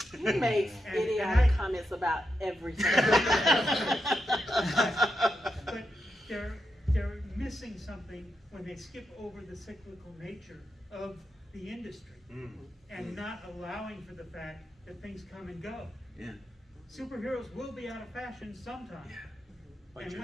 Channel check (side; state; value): both; normal; correlation 0.85